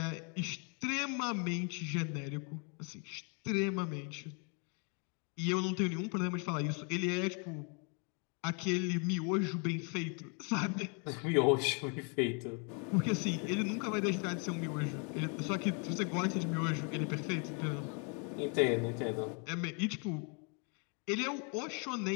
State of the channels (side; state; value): right; quieter; 36.5 dB